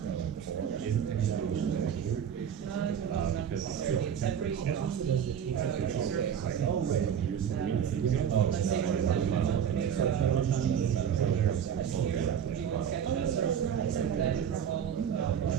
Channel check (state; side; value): quieter; left; 8.5 dB